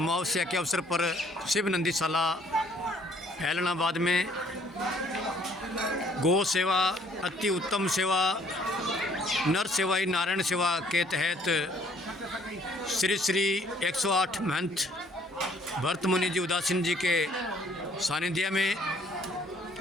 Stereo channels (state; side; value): normal; both; correlation 0.61